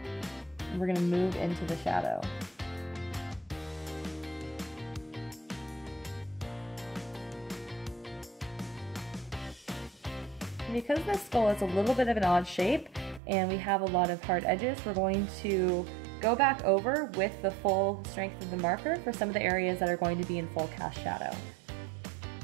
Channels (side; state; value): left; drops out; at 13.2 s